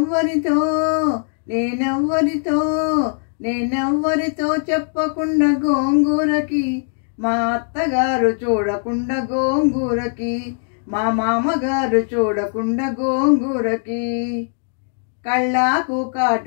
నేనెవ్వరితో నేనెవ్వరితో చెప్పకుండా గోంగూరకి, మా అత్తగారు చూడకుండా గోంగూరకి, మా మామగారు చూడకుండా గోంగూరకి. కళ్ళాకు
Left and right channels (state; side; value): silent; right; digital silence